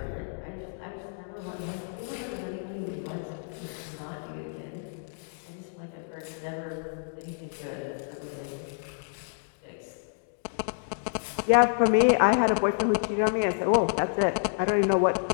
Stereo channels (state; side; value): silent; right; digital silence